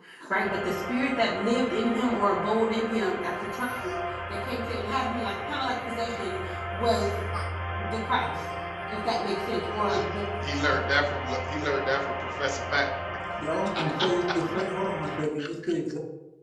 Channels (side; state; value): both; identical; correlation 1.00